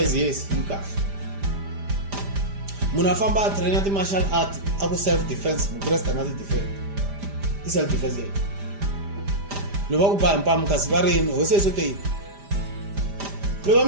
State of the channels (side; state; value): left; late; 5.0 ms